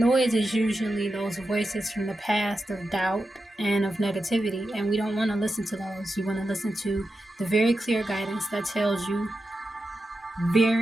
is usually those voices from the past of doubt and of negativity. And we don't want to listen to those. You want to listen to the very clear guidance that tells you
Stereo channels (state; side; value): normal; both; correlation 0.89